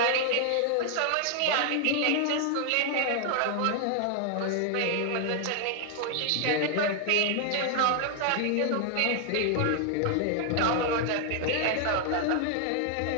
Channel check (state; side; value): different; both; correlation 0.00